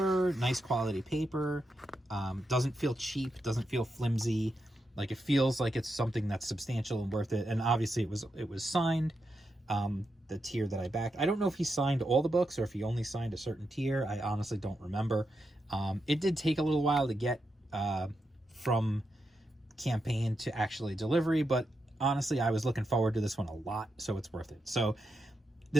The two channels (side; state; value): both; normal; correlation 0.85